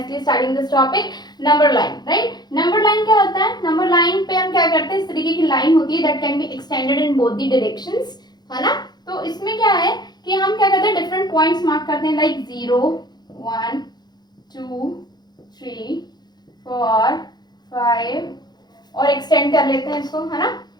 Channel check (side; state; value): right; late; 0.20 ms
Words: studying this topic, number line, right. Number line क्या होता है, नंबर लाइन पे हम क्या करते हैं, इस तरीके की लाइन होती है that can be extended in both the directions, है ना। तो इसमें क्या है कि हम क्या करते हैं, डिफरेंट पॉइंट्स मार्क करते हैं, लाइक 0 1 2 3 4 5 और एक्सटेंड कर लेते हैं इसको, है ना,